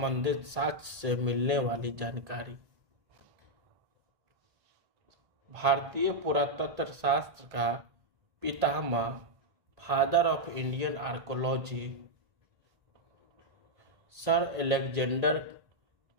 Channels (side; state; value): left; late; 1.8 ms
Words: साक्ष्य से मिलने वाली जानकारी। भारतीय पुरातत्व शास्त्र का पितामह, father of Indian archaeology, sir Alexander